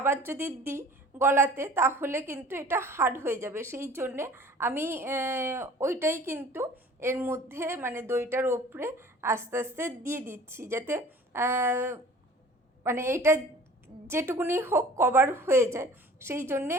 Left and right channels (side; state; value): both; normal; correlation 0.47